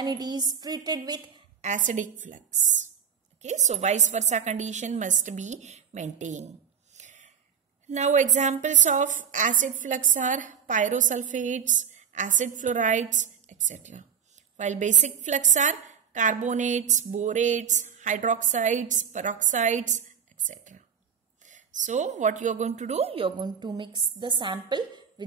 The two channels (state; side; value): quieter; left; 7.5 dB